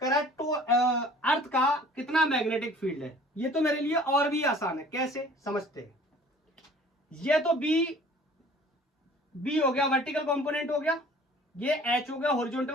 करंट तो अर्थ का कितना मैग्नेटिक फील्ड है, ये तो मेरे लिए और भी आसान है, कैसे समझते हैं। ये तो बी हो गया, वर्टिकल कंपोनेंट हो गया, ये एच हो गया,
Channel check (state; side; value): normal; both; correlation 0.50